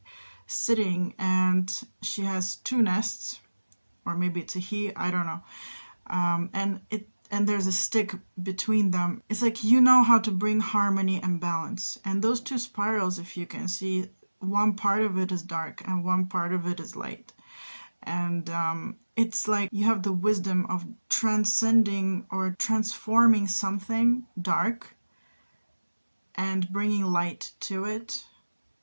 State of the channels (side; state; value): both; inverted; correlation -1.00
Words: sitting and she has 2 nests, or maybe it's a he, I don't know, and there's a stick between them. It's like, you know how to bring harmony and balance. And those 2 spirals, if you can see, one part of it is dark and one part of it is light. And it's like you have the wisdom of transcending or transforming something dark and bringing light to it